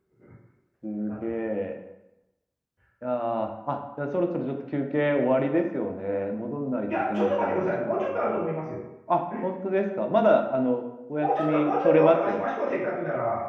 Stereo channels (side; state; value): both; identical; correlation 1.00